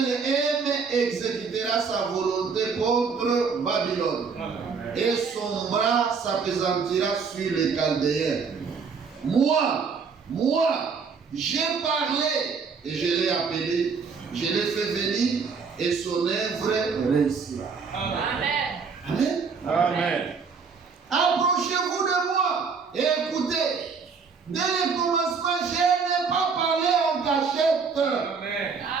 aime exécutera sa volonté contre Babylone. Et son bras s'appesantira sur les Chaldéens. Moi, j'ai parlé et je l'ai appelé, je l'ai fait venir et son œuvre réussira. Amen. Amen. Amen. Approchez-vous de moi et écoutez. Dès le commencement, je n'ai pas parlé en cachette. Amen.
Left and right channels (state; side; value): quieter; left; 5.4 dB